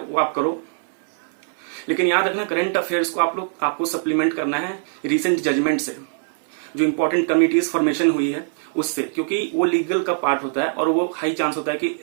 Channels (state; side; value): silent; left; 64 dB below the other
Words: वो आप करो। लेकिन याद रखना, करंट अफेयर्स को आपको सप्लीमेंट करना है रिसेंट जजमेंट से, जो इंपॉर्टेंट कमिटीज फॉर्मेशन हुई है उससे, क्योंकि वो लीगल का पार्ट होता है और वो हाई चांस होता है कि